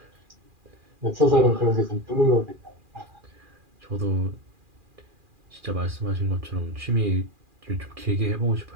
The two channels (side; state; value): left; late; 2.4 ms